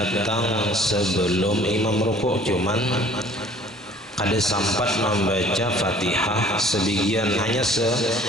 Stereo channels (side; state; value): both; normal; correlation 0.53